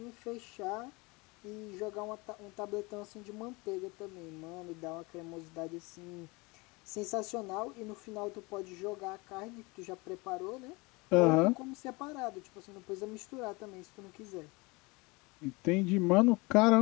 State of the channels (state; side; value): quieter; right; 25.6 dB